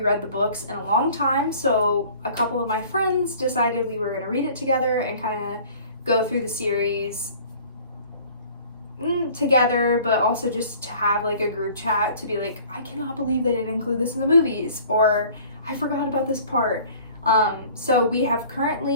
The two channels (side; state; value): both; inverted; correlation -0.49